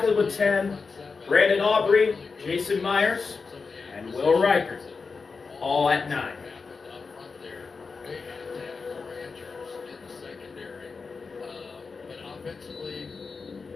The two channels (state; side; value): quieter; right; 4.7 dB